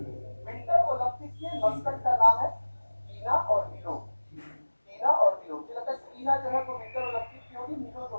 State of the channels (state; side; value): inverted; both; correlation -1.00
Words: विंटर ओलंपिक के मस्कट का नाम है टीना और मिलो, टीना और मिलो। मुझे लगता है टीना जो है वो विंटर ओलंपिक की होगी, मिलो जो